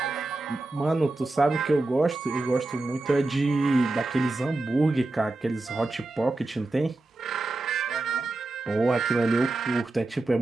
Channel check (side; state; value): left; quieter; 3.0 dB